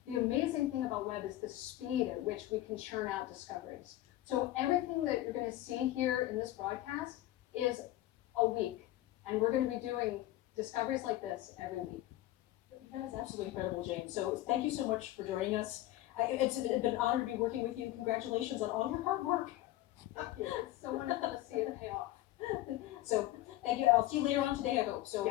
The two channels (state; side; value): quieter; right; 15.6 dB